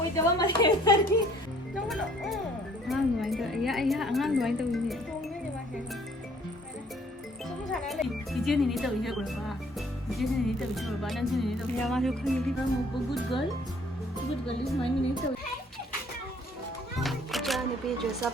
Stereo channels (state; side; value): normal; both; correlation 0.59